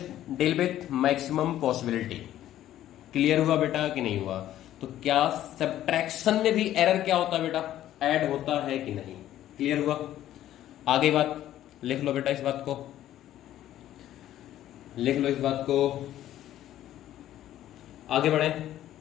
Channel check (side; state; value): right; quieter; 12.7 dB